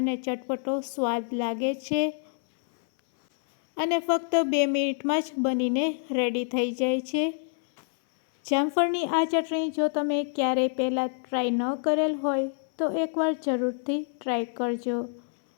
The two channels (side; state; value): right; silent; 60 dB below the other